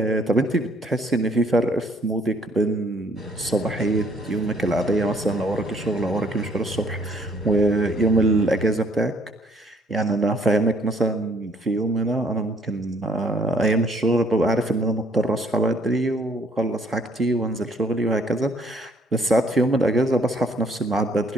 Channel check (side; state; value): both; normal; correlation 0.63